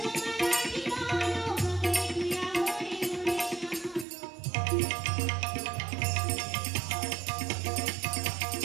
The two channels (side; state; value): left; drops out; at 4.0 s